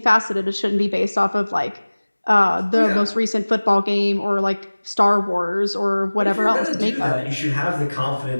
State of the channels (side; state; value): both; inverted; correlation -1.00